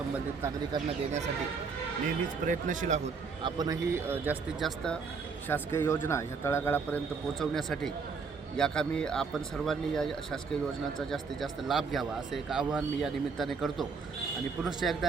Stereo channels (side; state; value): left; quieter; 5.1 dB